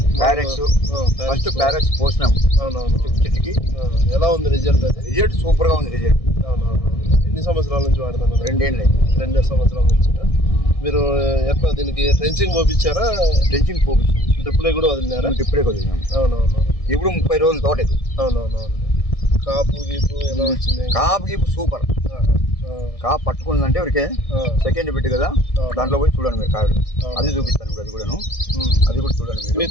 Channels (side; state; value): right; late; 1.6 ms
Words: ఫస్ట్ ప్యారెక్స్ పోసినాం. అవునవును. చెట్టుకి ఎలా ఉంది రిజల్ట్? రిజల్ట్ సూపర్ గా ఉంది. రిజల్ట్ ఎన్ని సంవత్సరాల నుంచి వాడతారు? 2 సంవత్సరాల నుంచి. మీరు ఎట్లా దీనికి ట్రెంచింగ్ పోపించారా? ట్రెంచింగ్ పోపించాం. డ్రిప్లే కూడా వదిలినారా? డ్రిప్లే వదిలినాం. అవునవును. ఇప్పుడు 30 రోజుల తోట ఇది. అవునవును. కాపు గీపు ఎలా వచ్చింది? కాపు గీపు సూపర్. కాపు పట్టుకుందంటే ఎవరికే సెకండ్ బిట్ కదా, దాంట్లో పోయి చూడండి మీరు కాయలు. అది చూపిస్తాను ఇప్పుడు. అది కూడా చూడండి మీరు. మీ